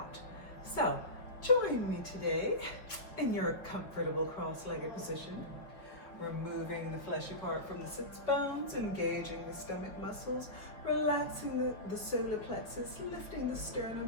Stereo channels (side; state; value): right; late; 5.2 ms